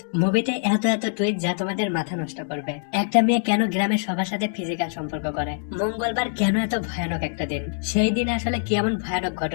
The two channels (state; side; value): silent; right; digital silence